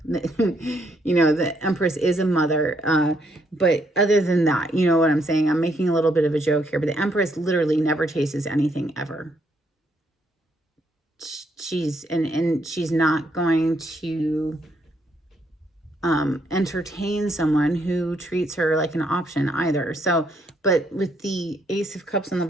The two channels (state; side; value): normal; both; correlation 0.73